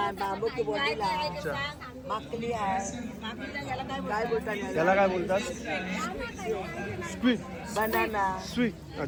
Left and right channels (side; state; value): both; identical; correlation 1.00